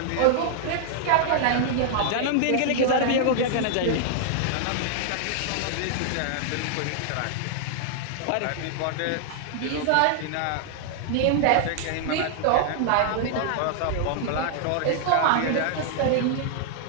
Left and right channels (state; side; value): different; both; correlation -0.01